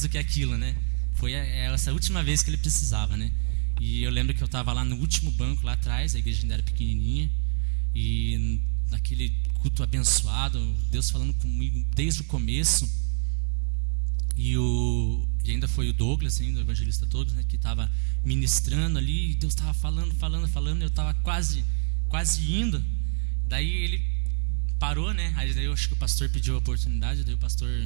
do que aquilo, né? Foi essa última vez que ele precisava, né? E eu lembro que eu estava lá no último banco, lá atrás, a igreja ainda era pequenininha. E naquele culto abençoado, Deus falando comigo desde o começo. E ainda foi o Douglas, o evangelista Douglas, né, que estava ministrando ali, e Deus estava falando, eu estava quase indo. Daí ele parou, né? Aí daí eu acho que o pastor pediu a oportunidade, daí o pastor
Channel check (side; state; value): left; silent; digital silence